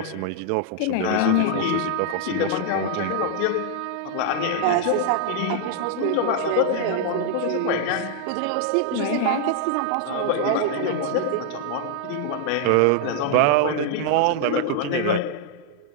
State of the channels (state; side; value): different; both; correlation 0.00